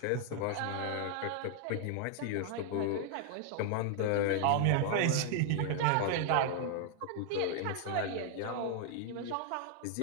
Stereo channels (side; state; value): both; different; correlation 0.00